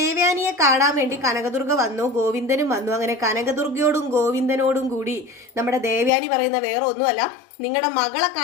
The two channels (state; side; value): drops out; right; at 6.1 s